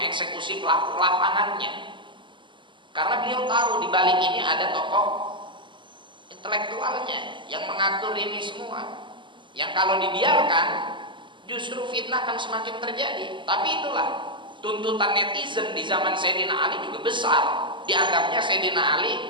pelaku lapangannya, karena beliau tahu di balik ini ada tokoh intelektualnya yang mengatur ini semua, yang kalau dibiarkan justru fitnah akan semakin terjadi. Tapi itulah tuntutan netizen di zaman Sayyidina Ali juga besar, dianggapnya Sayyidina Ali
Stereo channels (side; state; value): left; late; 0.24 ms